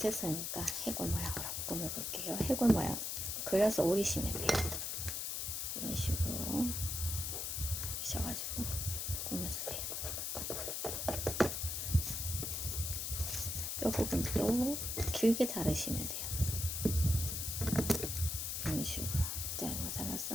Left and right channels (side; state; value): left; noise; hiss, 2 dB below the sound